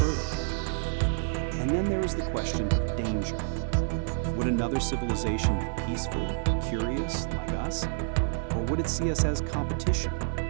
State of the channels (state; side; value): silent; left; 59 dB below the other